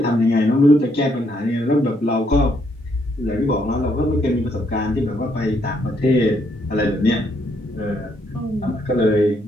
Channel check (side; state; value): both; normal; correlation 0.73